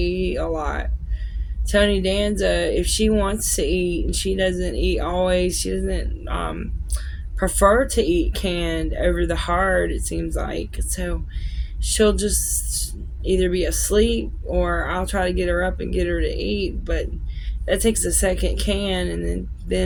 a lot. Tony Danza, if she wants to eat, and she doesn't eat always, she doesn't prefer to eat canned over the hard, it seems like. So she'll just either be asleep or I'll try to get her up and get her to eat, but that takes a second can, and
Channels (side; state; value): both; identical; correlation 1.00